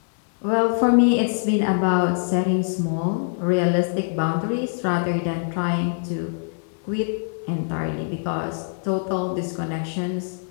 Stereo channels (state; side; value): silent; right; 63 dB below the other